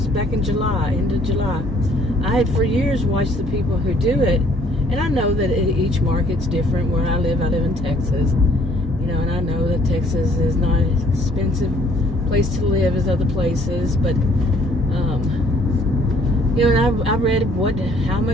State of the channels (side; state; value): both; normal; correlation 0.61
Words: back in July, end of July. I had for years watched the people who do it, and I know that each market's different. Where I live in Texas, and I know that Texas is not an expensive place to live as other places, but, and I read how